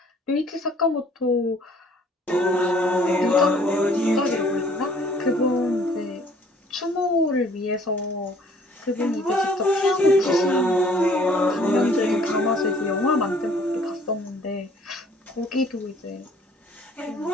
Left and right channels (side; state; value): both; normal; correlation 0.57